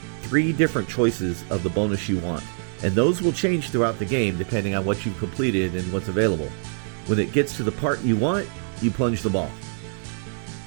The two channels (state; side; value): silent; left; 56 dB below the other